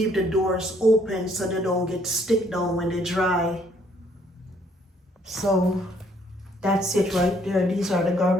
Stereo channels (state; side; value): normal; both; correlation 0.66